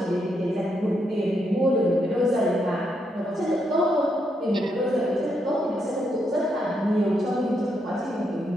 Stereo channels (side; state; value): both; normal; correlation 0.79